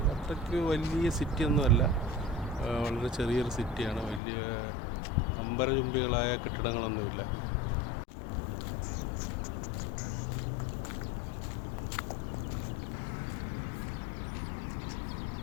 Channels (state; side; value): drops out; right; at 4.2 s